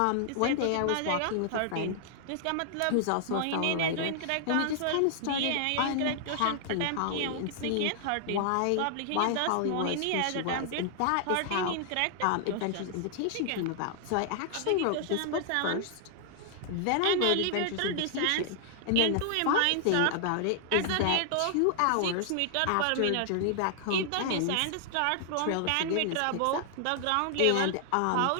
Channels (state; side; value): different; both; correlation 0.00